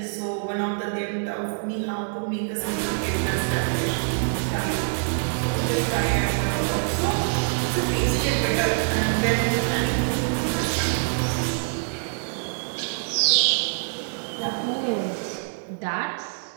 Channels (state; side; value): silent; left; digital silence